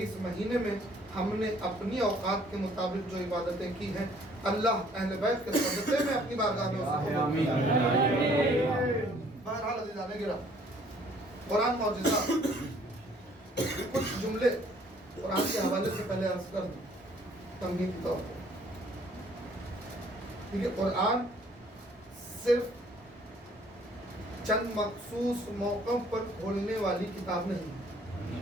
اس مہینے میں ہم نے اپنی اوقات کے مطابق جو عبادتیں کی ہیں اللہ اہل بیت کے صدقے میں اپنی بارگاہ میں اسے قبول فرمائے. بہرحال عزیزان گرامی، قرآن معجزہ. کچھ جملے قرآن کے حوالے سے پہلے عرض کر دوں تمہید کے طور پر. کیونکہ قرآن صرف چند مخصوص موقعوں پر کھولنے والی کتاب نہیں ہے.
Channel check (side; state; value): both; normal; correlation 0.59